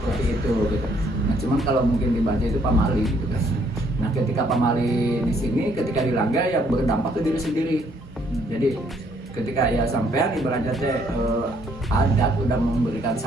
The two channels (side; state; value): both; normal; correlation 0.67